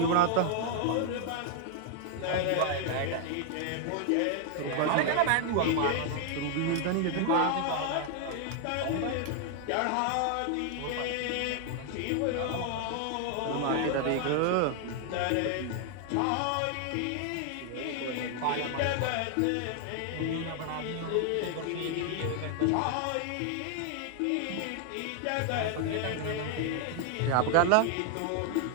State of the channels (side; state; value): both; different; correlation 0.00